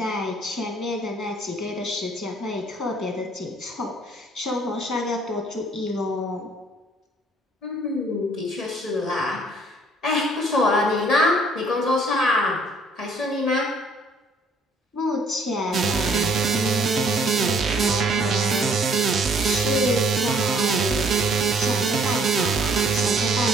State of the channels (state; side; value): normal; both; correlation 0.61